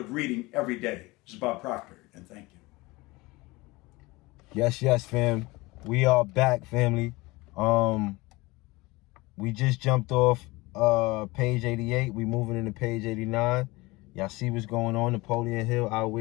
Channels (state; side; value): quieter; right; 22.4 dB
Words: reading every day. This is Bob Proctor, and thank you. Yes, fam. We are back, family. We just jumped off page 88. We moving into page 89. Y'all see what's going on. Napoleon Hill,